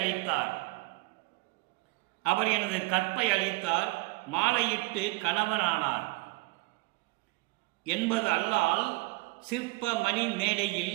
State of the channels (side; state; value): left; quieter; 23.1 dB